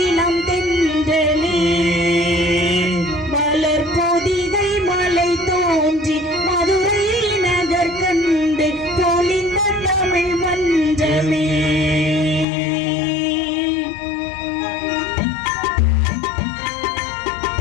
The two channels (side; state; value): right; drops out; at 12.5 s